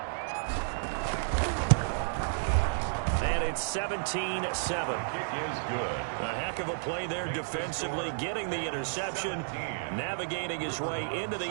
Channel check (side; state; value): left; silent; digital silence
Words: And it's 17-7. Kick is good. A heck of a play there defensively, getting the interception, navigating his way into the